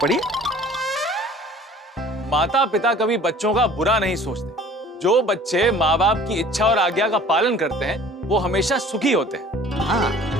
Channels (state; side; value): normal; both; correlation 0.48